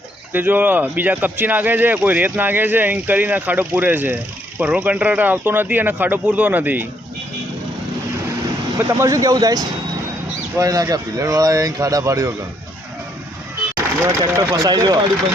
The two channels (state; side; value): normal; both; correlation 0.71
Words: તે જો બીજા કપચી નાખે છે, કોઈ રેત નાખે છે, એમ કરીને ખાડો પૂરે છે. પરનો કંટ્રાક્ટર આવતો નથી અને ખાડો પૂરતો નથી. તમારે શું કેવું થાય? કોઈ ના કે પિલરવાળા અહીં ખાડા પાડ્યો કે ટ્રેક્ટર ફસાઈ ગયો.